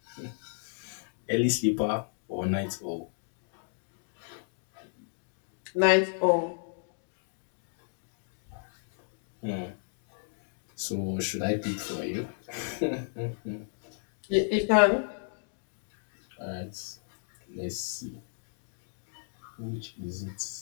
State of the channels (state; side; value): silent; right; digital silence